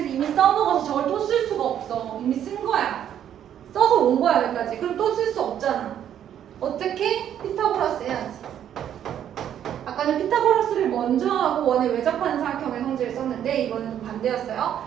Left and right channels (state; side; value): quieter; left; 10.0 dB